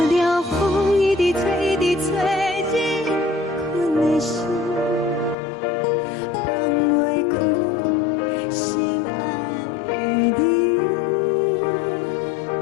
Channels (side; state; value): right; drops out; at 5.4 s